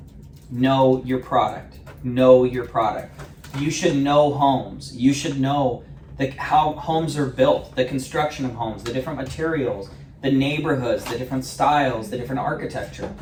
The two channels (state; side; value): identical; both; correlation 1.00